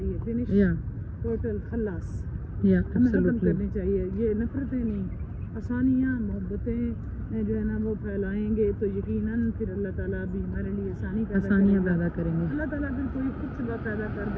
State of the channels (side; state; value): both; identical; correlation 1.00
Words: finish, total खल्लास, हमें खत्म करनी चाहिए। ये नफरतें नहीं, आसानियाँ, मोहब्बतें जो है ना वो फैलाएंगे तो यकीनन फिर अल्लाह ताला भी हमारे लिए आसानियाँ पैदा करेंगे। अल्लाह ताला फिर कोई खुद सबब पैदा कर